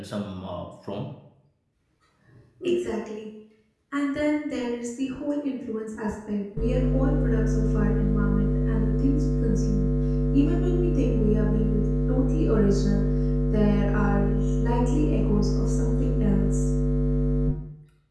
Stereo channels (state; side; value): identical; both; correlation 1.00